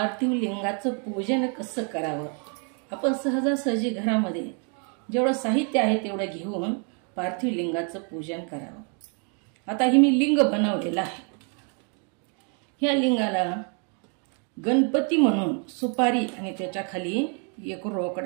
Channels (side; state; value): left; quieter; 39.6 dB